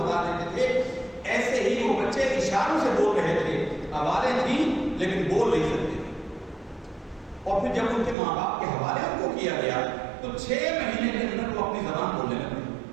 بتا دیتے تھے. ایسے ہی وہ بچے اشاروں سے بول رہے تھے, آوازیں تھیں لیکن بول نہیں سکتے تھے. اور پھر جب ان کے ماں باپ کے حوالے ان کو کیا گیا تو 6 مہینے کے اندر وہ اپنی زبان بولنے لگے.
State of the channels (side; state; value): left; drops out; at 8.2 s